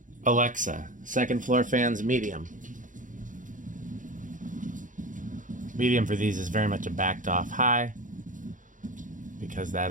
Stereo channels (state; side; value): late; left; 0.38 ms